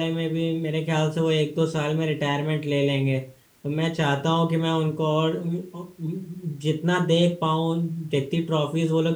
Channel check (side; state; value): both; identical; correlation 1.00